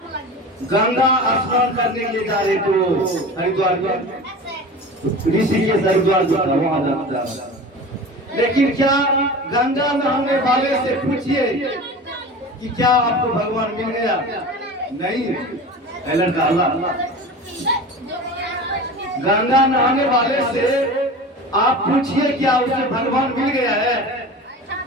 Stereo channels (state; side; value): normal; both; correlation 0.34